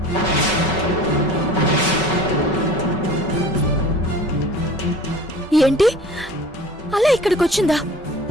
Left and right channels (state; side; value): normal; both; correlation 0.43